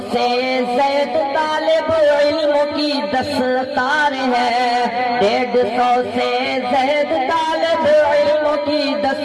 سے زائد طالب علم کی دستار ہے، 150 سے زائد طالب علم کی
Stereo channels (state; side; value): identical; both; correlation 1.00